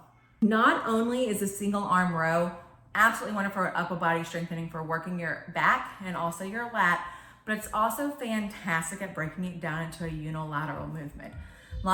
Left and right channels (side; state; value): both; identical; correlation 1.00